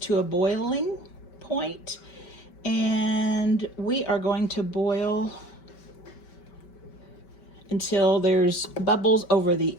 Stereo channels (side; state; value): right; late; 5.2 ms